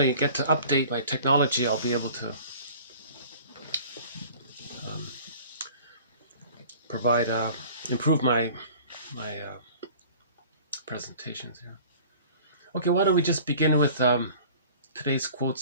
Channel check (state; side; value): inverted; both; correlation -0.46